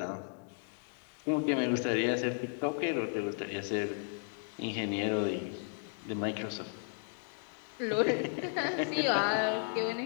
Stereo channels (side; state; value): right; silent; 55 dB below the other